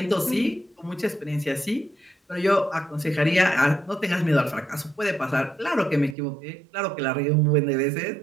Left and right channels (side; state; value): left; drops out; at 6.2 s